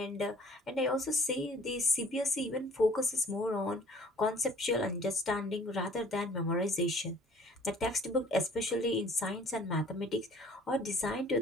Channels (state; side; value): normal; both; correlation 0.53